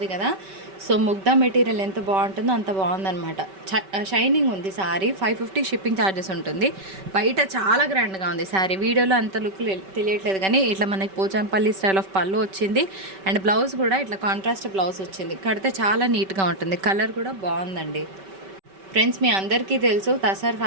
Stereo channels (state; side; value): late; left; 5.2 ms